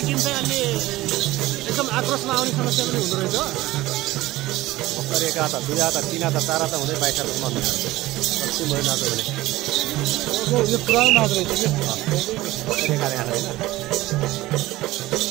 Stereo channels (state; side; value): quieter; left; 17.6 dB